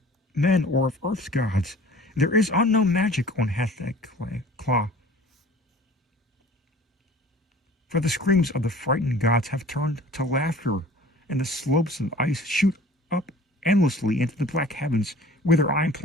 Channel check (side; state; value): both; normal; correlation 0.46